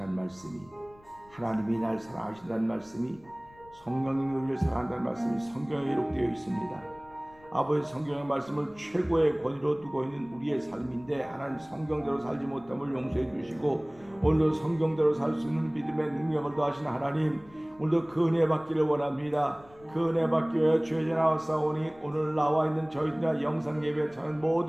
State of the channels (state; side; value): noise; left; rumble, 26 dB below the sound